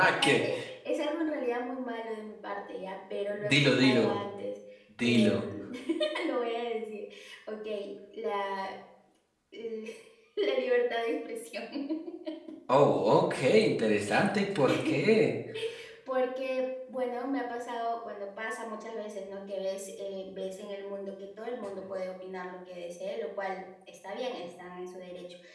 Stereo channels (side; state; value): both; identical; correlation 1.00